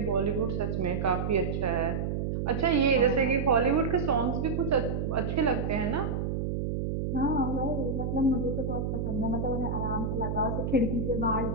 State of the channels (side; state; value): right; noise; hum, 1 dB below the sound